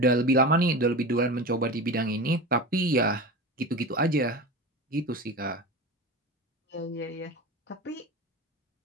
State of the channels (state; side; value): normal; both; correlation 0.28